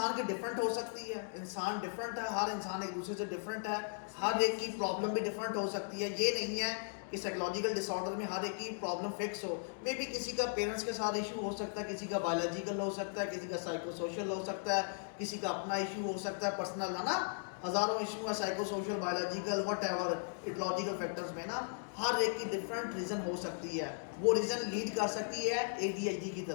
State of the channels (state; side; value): silent; right; digital silence